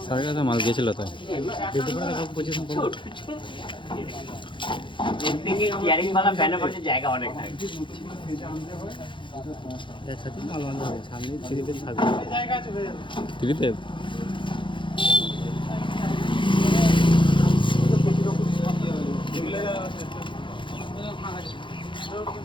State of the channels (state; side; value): late; right; 0.24 ms